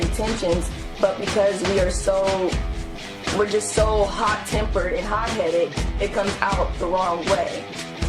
but because we're just so hot-tempered and hot-headed, it comes out the wrong way.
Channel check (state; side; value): identical; both; correlation 1.00